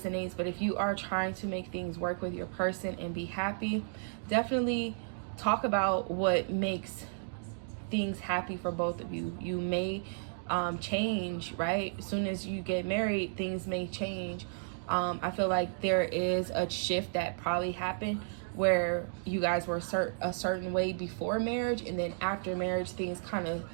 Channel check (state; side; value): silent; left; digital silence